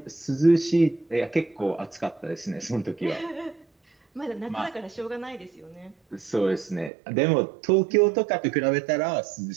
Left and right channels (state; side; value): drops out; left; at 6.9 s